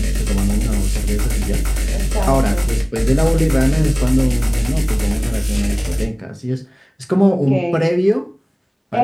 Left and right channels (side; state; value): both; identical; correlation 1.00